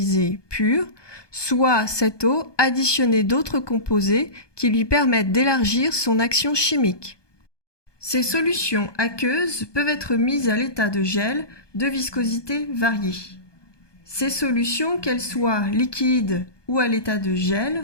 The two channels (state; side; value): late; right; 1.2 ms